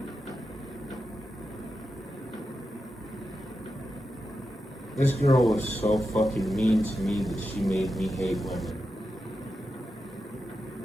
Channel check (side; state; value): both; normal; correlation 0.89